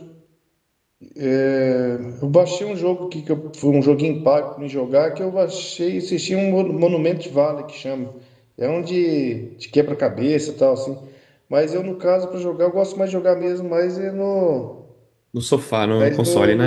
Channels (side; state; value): both; identical; correlation 1.00